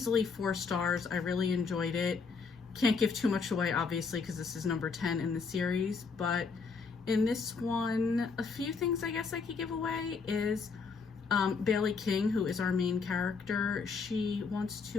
4 stars. I really enjoyed it. Can't give too much away, obviously, because this is number 10 in the series, but in this one, a few things I guess I could give away is Bailey King, who is our main character, she wants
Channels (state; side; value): quieter; right; 5.0 dB